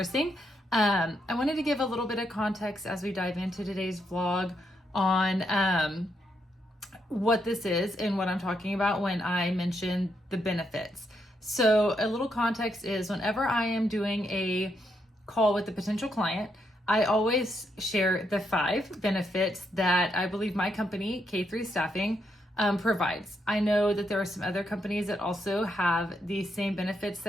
I wanted to give a little bit of context as we dive into today's vlog on what this is and what I'm talking about when I mention the benefits. So a little context is whenever I am doing a call with a potential client, I always share the 5 benefits that I believe my company, K3 Staffing, provides. I know that there are some other companies that also have these same benefits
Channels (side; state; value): both; normal; correlation 0.79